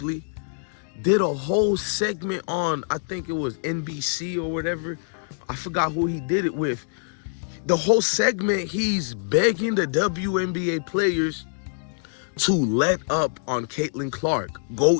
did a whole segment on, I think it was NBC or whatever. I forgot who he did it with. The whole segment, he's begging the WNBA players to let up on Caitlin Clark.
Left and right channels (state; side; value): silent; right; digital silence